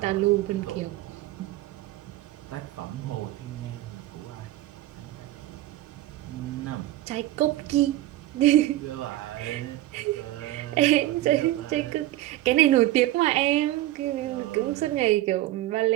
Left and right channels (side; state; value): left; quieter; 15.8 dB